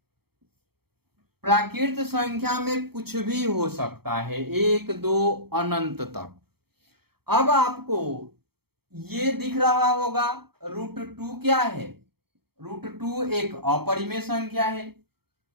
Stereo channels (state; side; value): late; left; 0.96 ms